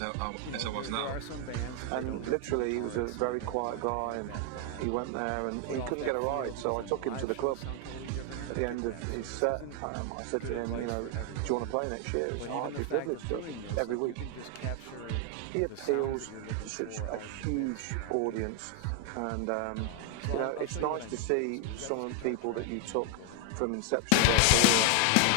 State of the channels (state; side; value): different; both; correlation 0.00